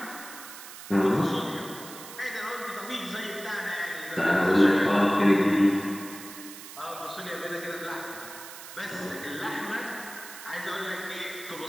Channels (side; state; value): right; noise; hiss, 13 dB below the sound